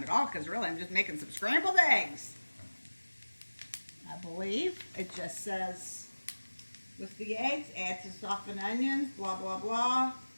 at all because really I'm just making some scrambled eggs. I believe it just says with the eggs, add to softened onions, blah, blah, blah.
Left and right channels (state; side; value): inverted; both; correlation -1.00